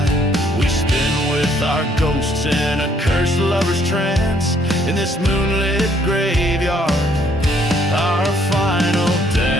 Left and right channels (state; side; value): normal; both; correlation 0.66